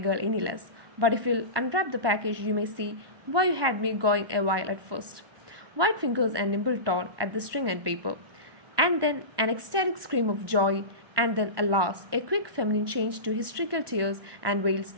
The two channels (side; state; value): left; late; 1.2 ms